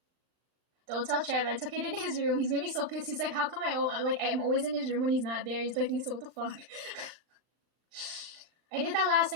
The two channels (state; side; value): late; left; 39 ms